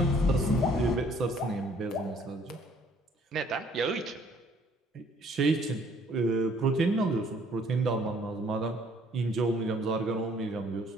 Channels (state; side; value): normal; both; correlation 0.60